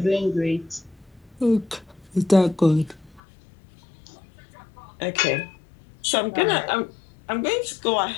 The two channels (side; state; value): right; drops out; at 3.2 s